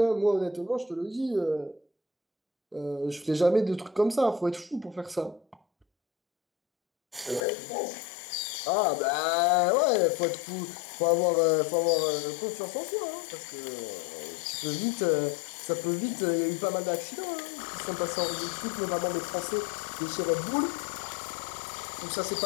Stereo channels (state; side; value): drops out; right; at 7.4 s